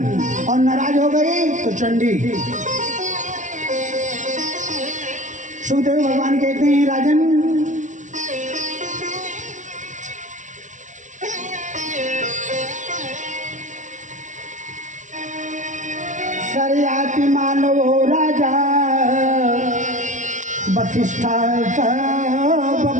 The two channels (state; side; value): late; left; 0.36 ms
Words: और नाराज हो गई तो चंडी। सुखदेव भगवान कहते हैं राजन सर्याति मानव हो राजा वशिष्ठा